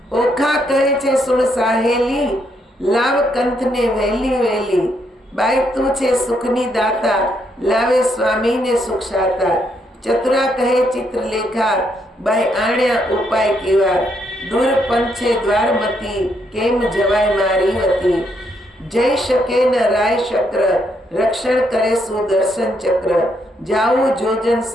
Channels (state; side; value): normal; both; correlation 0.75